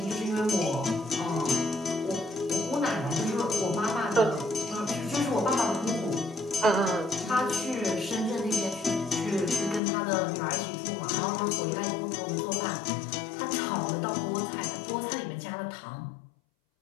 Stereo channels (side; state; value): right; drops out; at 9.8 s